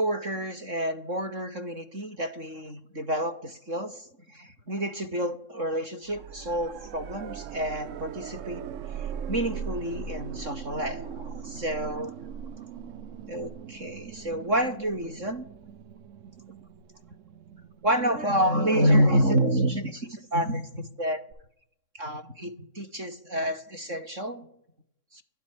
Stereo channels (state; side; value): late; left; 3.6 ms